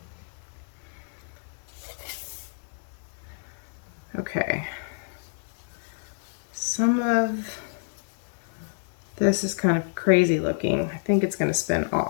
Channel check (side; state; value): right; silent; digital silence